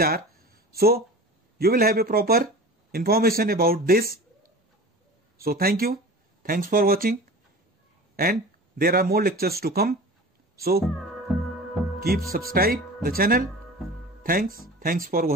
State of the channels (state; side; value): normal; both; correlation 0.37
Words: are. So you will have a proper information about this. So thank you. Thanks for watching. And there are more lectures to come. So keep subscribe the channel. Thanks for